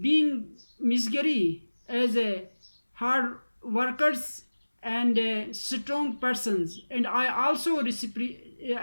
being Misgari as a hard workers and strong persons. And I also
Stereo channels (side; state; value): both; inverted; correlation -1.00